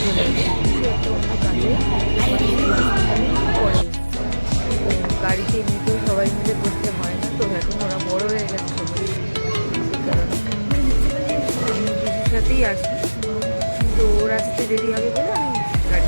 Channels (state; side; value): inverted; both; correlation -1.00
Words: আছে, কিছু একটা অন্য কাজে পরে গাড়িতে এমনিতেও সবাই মিলে বসতে হয় না, তো এখন ওরা বড় হয়ে গেছে সবাই, সেই কারণে আমি দিদির সাথেই আসি। তো ওর আসতে দেরি হবে বলে আমি